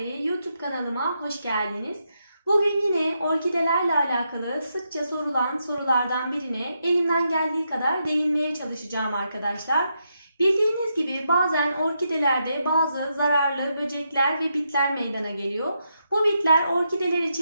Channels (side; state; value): both; inverted; correlation -0.82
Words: YouTube kanalıma hoş geldiniz. Bugün yine orkidelerle alakalı sıkça sorulan sorulardan birine elimden geldiği kadar değinmeye çalışacağım arkadaşlar. Bildiğiniz gibi bazen orkidelerde bazı zararlı böcekler ve bitler meydana geliyor. Bu bitler orkideler